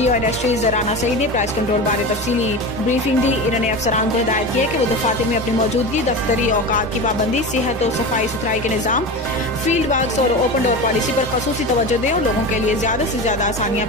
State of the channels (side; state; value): both; normal; correlation 0.26